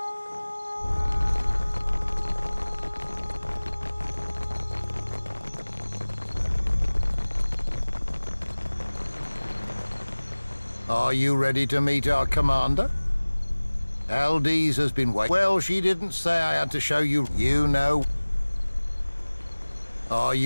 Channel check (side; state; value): both; inverted; correlation -1.00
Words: Are you ready to meet our commander? Aldise has been waiting. Well, she didn't say I had to show you. You know. Are